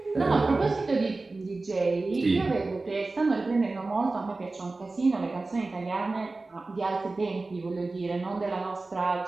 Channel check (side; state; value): left; quieter; 3.4 dB